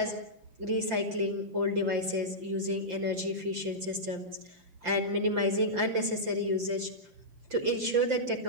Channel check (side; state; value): left; late; 5.8 ms